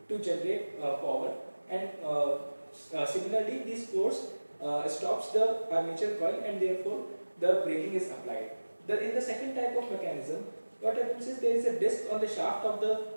to generate power, and similarly this force stops the armature coil, and therefore the braking is applied. In the second type of mechanism, what happens is there is a disc on the shaft of the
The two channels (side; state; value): both; inverted; correlation -1.00